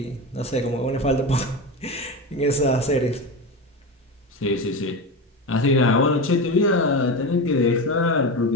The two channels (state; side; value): normal; both; correlation 0.21